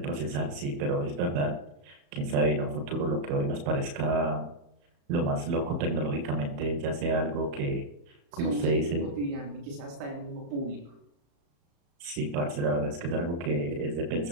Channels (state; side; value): late; left; 35 ms